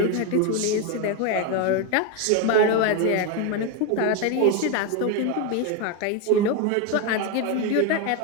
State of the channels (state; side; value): different; both; correlation 0.02